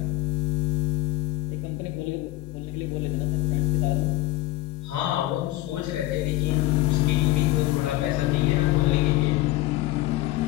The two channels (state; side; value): quieter; right; 16.9 dB